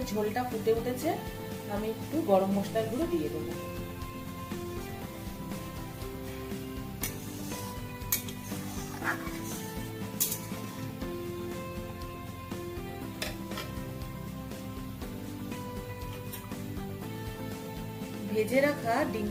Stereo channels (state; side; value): identical; both; correlation 1.00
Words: ঝোলটা ফুটে উঠেছে, আমি একটু গরম মশলার গুঁড়ো দিয়ে দেবো। ভেজে রাখা ডিম